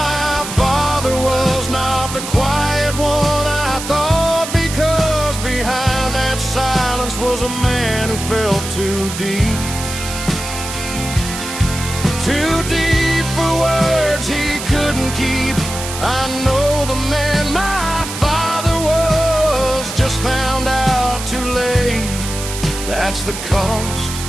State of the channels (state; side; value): noise; right; hiss, 8 dB below the sound